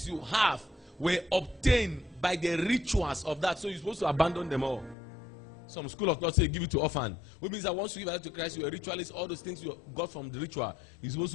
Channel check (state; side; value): drops out; right; at 5.0 s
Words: you have were obtained by the rituals of that. So you're supposed to abandon them all. Some school of thought say give it to orphan. Which means that once you give your life to Christ, you're a ritualist. All those things you got from the ritual, you're supposed